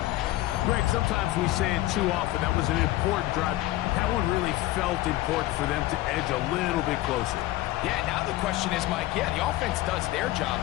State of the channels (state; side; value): quieter; right; 16.6 dB